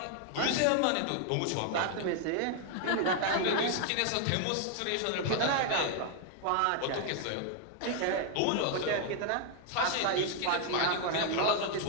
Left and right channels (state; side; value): different; both; correlation 0.00